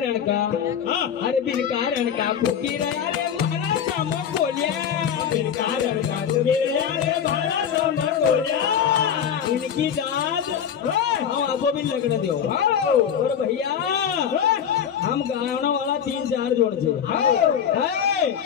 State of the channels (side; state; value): right; quieter; 8.4 dB